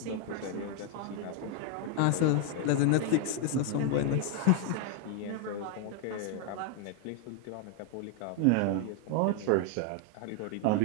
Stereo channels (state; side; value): different; both; correlation 0.00